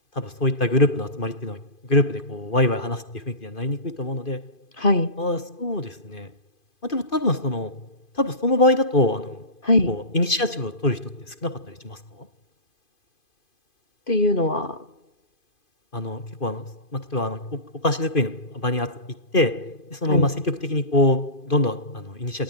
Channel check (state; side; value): late; right; 2.5 ms